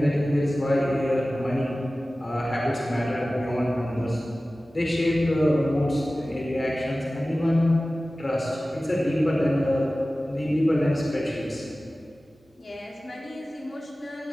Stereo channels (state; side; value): normal; both; correlation 0.96